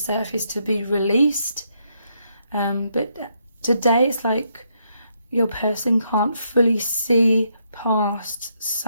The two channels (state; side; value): inverted; both; correlation -0.76